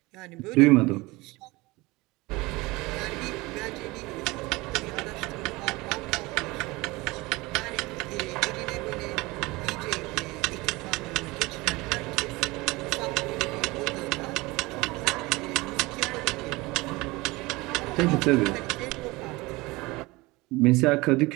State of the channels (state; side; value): quieter; left; 22.3 dB